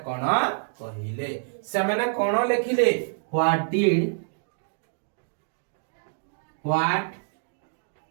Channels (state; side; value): silent; left; digital silence